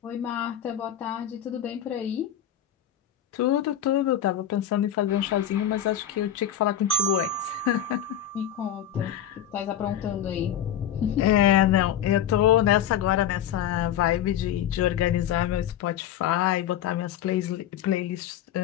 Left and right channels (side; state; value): right; quieter; 10.1 dB